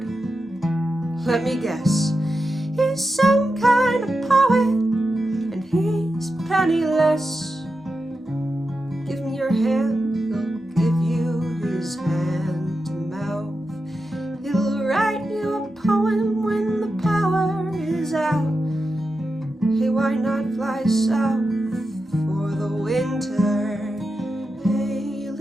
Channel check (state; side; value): normal; both; correlation 0.90